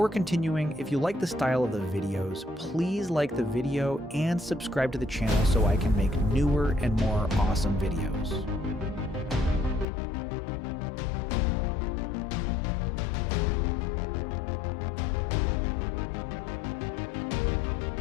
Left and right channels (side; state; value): right; drops out; at 9.9 s